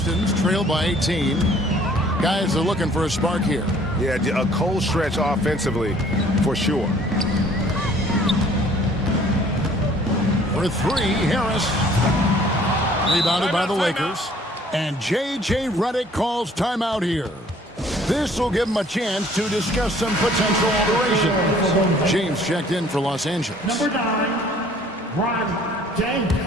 trail by 18. Guys are looking for a spark here. Yeah, a cold stretch offensively, for sure. For 3, Harris. Rebounded by the Lakers. And J.J. Redick calls timeout here. This will give him a chance to discuss some potential alterations. James checked in for Los Angeles. Number 9, Ron James.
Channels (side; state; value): both; normal; correlation 0.56